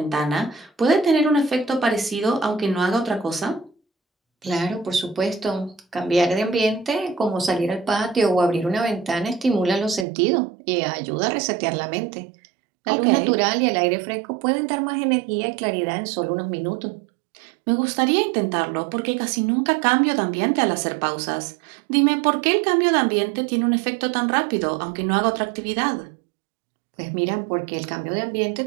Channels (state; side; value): drops out; left; at 10.1 s